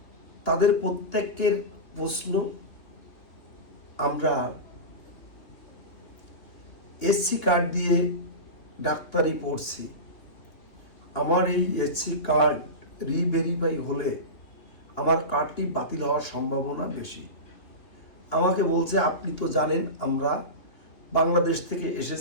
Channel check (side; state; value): right; late; 3.1 ms